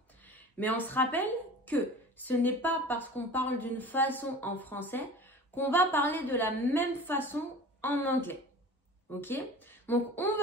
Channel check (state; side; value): normal; both; correlation 0.39